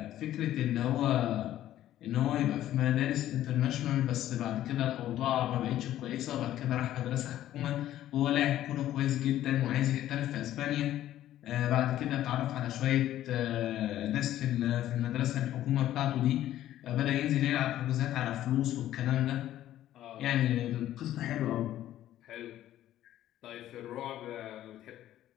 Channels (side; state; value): right; quieter; 12.9 dB